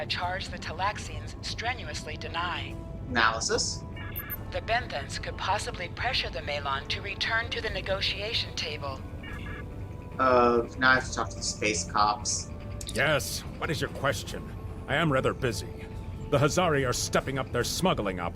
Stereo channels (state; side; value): identical; both; correlation 1.00